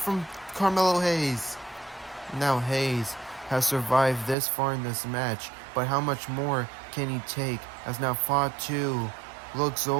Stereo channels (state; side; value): drops out; left; at 4.4 s